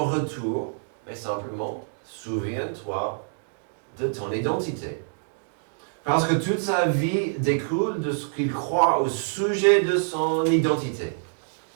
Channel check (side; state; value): left; silent; digital silence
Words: retour. Mais simplement, souviens-toi de ton identité. Parce que toute sa vie découle de ce qu'il croit au sujet de son identité.